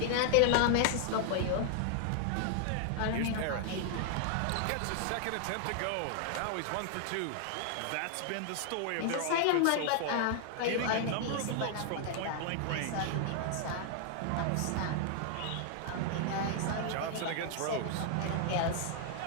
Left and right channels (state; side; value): different; both; correlation 0.00